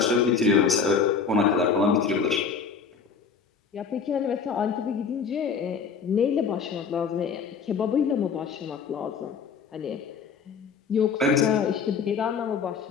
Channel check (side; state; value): right; quieter; 5.8 dB